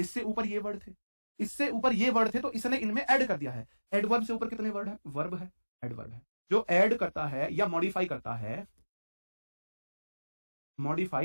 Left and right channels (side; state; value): both; inverted; correlation -1.00